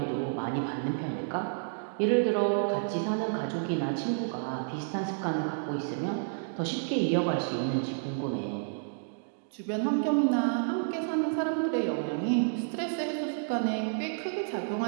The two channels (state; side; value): silent; left; digital silence